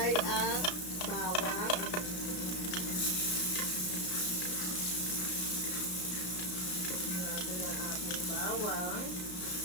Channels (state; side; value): late; right; 33 ms